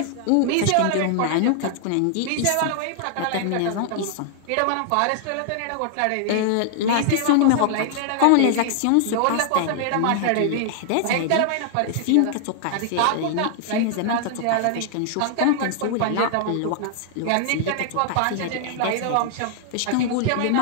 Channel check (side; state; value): both; different; correlation -0.01